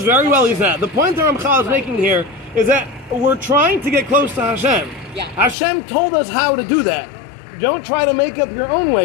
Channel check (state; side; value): drops out; right; at 5.6 s